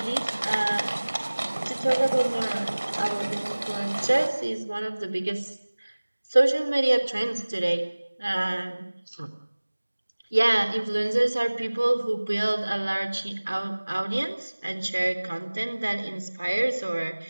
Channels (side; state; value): both; inverted; correlation -1.00